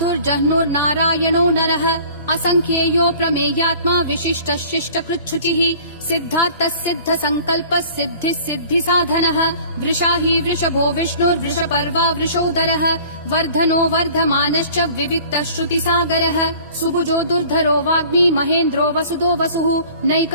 नरः असंख्येयो प्रमेयात्मा विशिष्टः शिष्टकृच्छुचिः सिद्धार्थः सिद्ध संकल्पः सिद्धिः सिद्धि साधनः वृषाही वृषभो विष्णुर्वृषपर्वा वृषोदरः वर्धनो वर्धमानश्च विविक्तः श्रुतिसागरः सुभुजो दुर्धरो वाग्मी महेन्द्रो वसुदो वसुः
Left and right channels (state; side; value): inverted; both; correlation -0.48